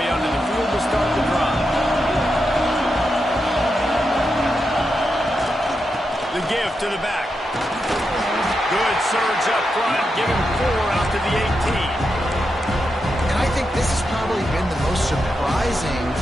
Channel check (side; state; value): both; normal; correlation 0.86